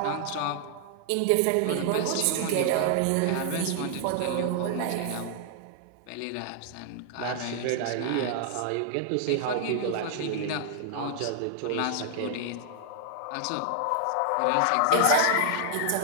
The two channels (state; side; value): different; both; correlation 0.00